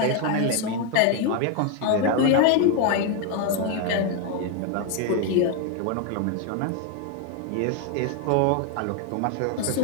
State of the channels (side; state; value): both; different; correlation 0.01